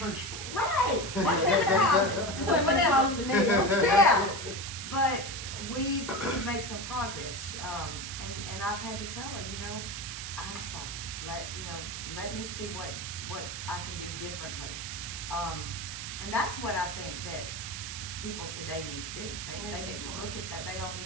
Right. Whatever. Yeah. But we've made some progress, and I've had to tell her, you know, I'm sorry. Let me see what I can do differently. And that's what I think that people today need to do. They need to look at that. They don't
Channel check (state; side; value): noise; right; hiss, 7 dB below the sound